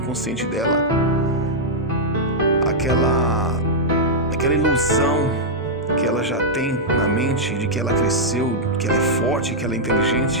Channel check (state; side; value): normal; both; correlation -0.05